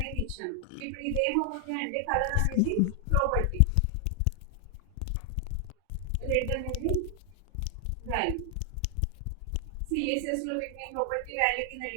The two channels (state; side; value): different; both; correlation 0.00